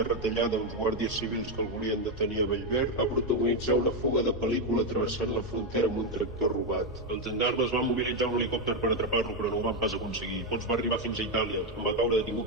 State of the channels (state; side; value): normal; both; correlation 0.05